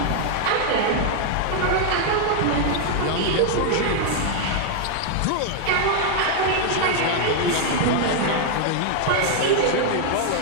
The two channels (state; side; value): different; both; correlation 0.00